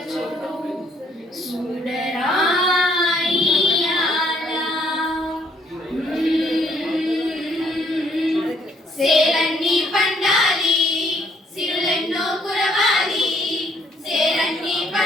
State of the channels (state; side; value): normal; both; correlation 0.66